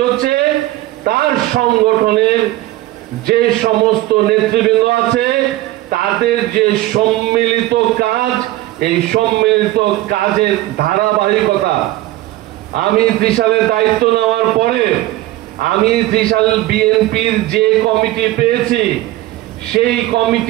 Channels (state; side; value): quieter; left; 16.5 dB